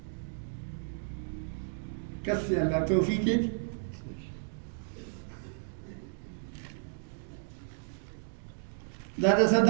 کسی اللہ توفیق ہے. دادا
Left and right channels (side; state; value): left; silent; digital silence